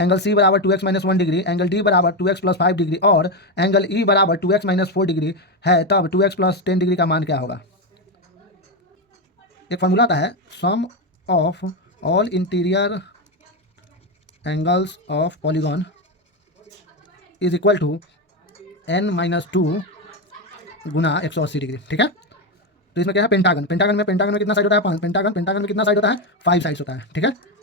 सी बराबर 2x - 1 डिग्री, एंगल डी बराबर 2x + 5 डिग्री और एंगल ई बराबर 2x - 4 डिग्री है, तब 2x + 10 डिग्री का मान क्या होगा। एक फॉर्मूला आता है, sum of all interior angles of polygon is equal to n-2 गुना 180 डिग्री, ठीक है। तो इसमें क्या है, पेंटागन में कितना साइड होता है, 5। पेंटागन में कितना साइड होता है, 5 साइड्स होता है, ठीक है।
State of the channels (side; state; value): both; normal; correlation 0.10